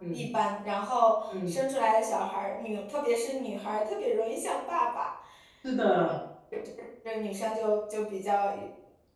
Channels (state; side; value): identical; both; correlation 1.00